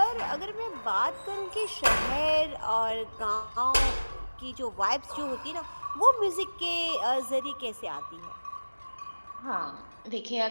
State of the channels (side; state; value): both; inverted; correlation -1.00